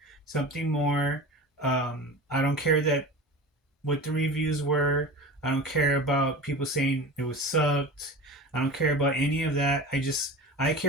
more. I don't care that what the reviews were. I don't care about people saying it was sucked. I don't care about any of that. I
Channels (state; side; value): normal; both; correlation 0.32